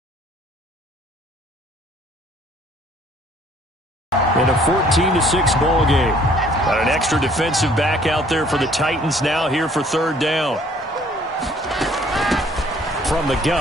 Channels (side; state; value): both; normal; correlation 0.59